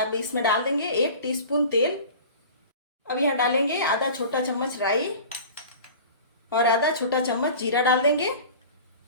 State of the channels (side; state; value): both; inverted; correlation -0.39